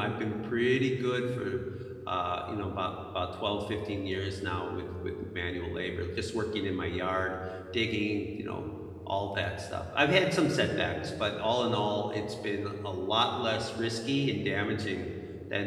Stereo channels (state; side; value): identical; both; correlation 1.00